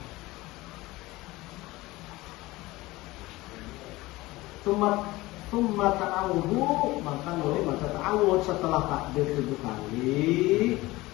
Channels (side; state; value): right; quieter; 19.6 dB